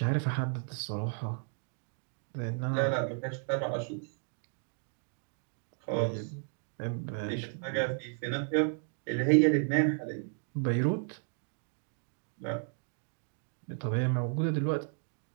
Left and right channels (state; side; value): silent; left; 55 dB below the other